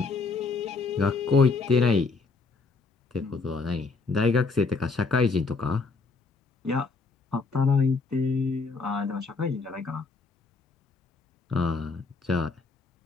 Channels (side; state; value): right; quieter; 4.3 dB